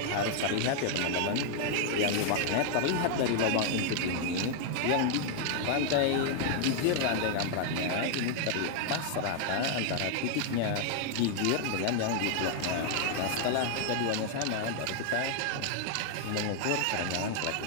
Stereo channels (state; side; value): different; both; correlation 0.00